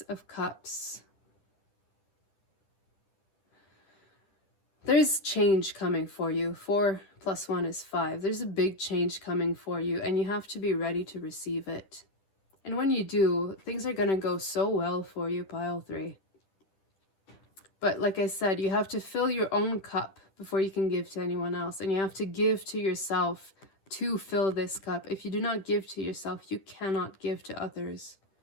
of Cups. There's change coming for you. 4 + 1 is 5. There's a big change coming for you, and you have to be ready to receive it. And when you do, things are going to go so well for you, pile 3. But like I said, you have to fill your own cup before you can give to anyone else. And you have to give to yourself to fill this cup. If you do not give to yourself, you cannot give to others.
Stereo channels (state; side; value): late; right; 10 ms